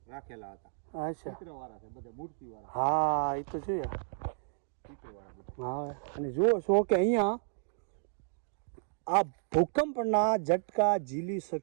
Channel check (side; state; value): left; silent; digital silence